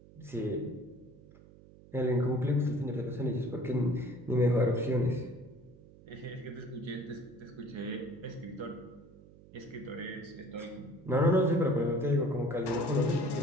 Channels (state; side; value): noise; right; hum, 22 dB below the sound